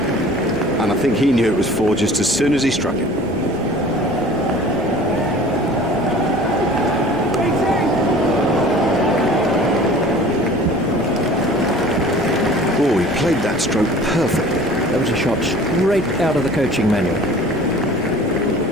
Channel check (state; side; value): normal; both; correlation 0.46